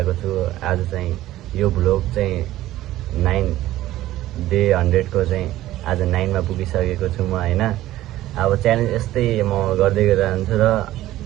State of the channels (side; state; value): left; quieter; 15.0 dB